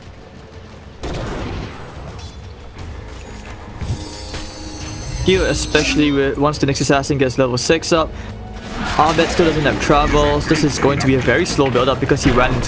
Here, especially once the Nyx Assassin gets level 6 up, Abed still doesn't have travels. This is going to be a very slow build up because he ran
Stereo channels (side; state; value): both; identical; correlation 1.00